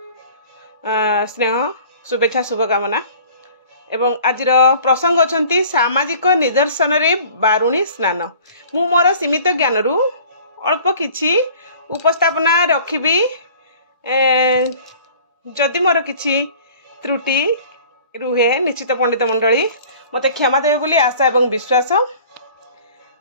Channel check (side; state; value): both; inverted; correlation -0.48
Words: स्नेह शुभेच्छा शुभकामना एवं आज प्रसंग अच्छा सामाजिक निदर्शन रे बारुणी स्नान मु मोर सीमित ज्ञान रु अल्प किछि उपस्थापना रखिबी जदि मोर किछि त्रुटि रुहे निश्चित पंडित मंडली मते क्षमा देवे बोली आशा एवं विश्वास।